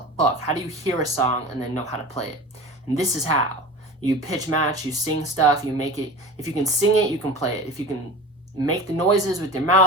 fuck? How do you hear a song and then know how to play it? And this is how. You pitch match, you sing stuff, you make it. If you can sing it, you can play it. If you can make the noises with your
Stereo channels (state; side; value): normal; both; correlation 0.34